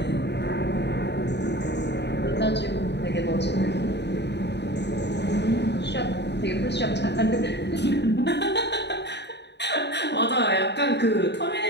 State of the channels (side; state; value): right; late; 0.50 ms